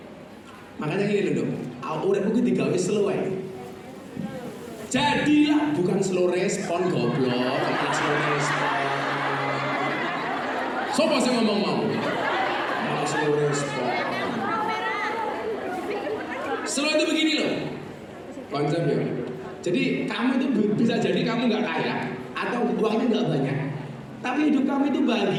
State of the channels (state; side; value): identical; both; correlation 1.00